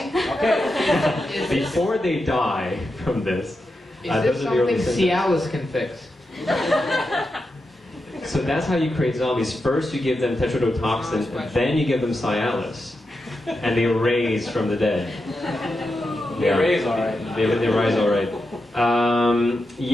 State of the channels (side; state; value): both; normal; correlation 0.88